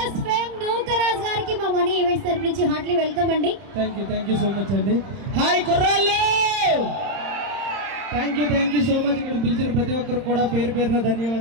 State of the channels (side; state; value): left; late; 31 ms